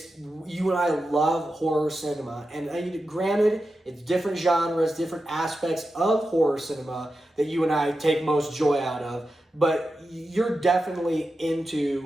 you and I love horror cinema, and granted, it's different genres, different aspects of horror cinema that you and I take most joy out of. But you're definitely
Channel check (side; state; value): both; normal; correlation 0.91